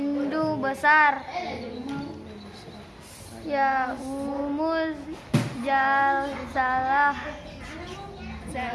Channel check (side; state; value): both; identical; correlation 1.00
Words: besar. Yaumul Jalsalah,